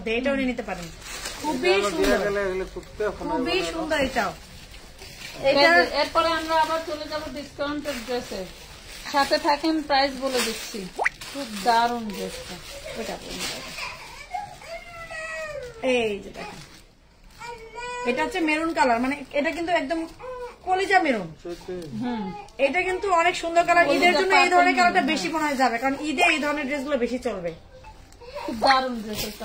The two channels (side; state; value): both; identical; correlation 1.00